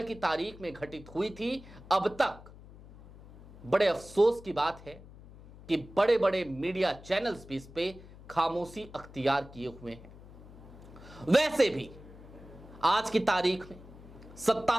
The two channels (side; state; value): left; noise; hum, 19 dB below the sound